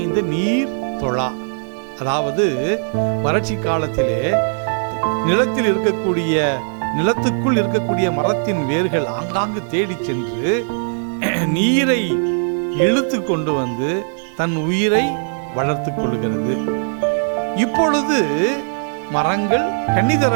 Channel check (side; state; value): left; silent; digital silence